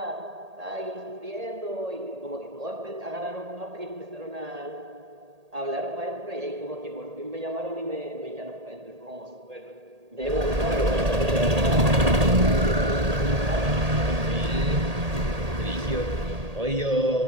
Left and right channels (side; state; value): left; late; 1.8 ms